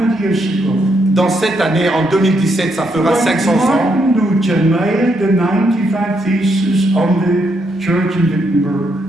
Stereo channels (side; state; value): both; normal; correlation 0.77